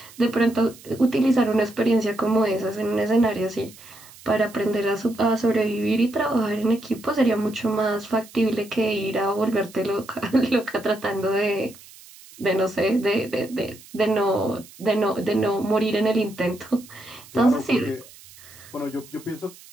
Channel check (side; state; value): right; noise; hiss, 21 dB below the sound